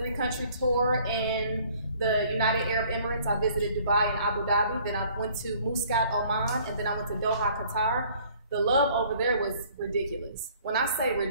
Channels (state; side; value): inverted; both; correlation -0.57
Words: tour in the United Arab Emirates, I visited Dubai and Abu Dhabi. Then I went to Muscat, Oman, and then I went to Doha, Qatar. The love over there was ridiculous. When I say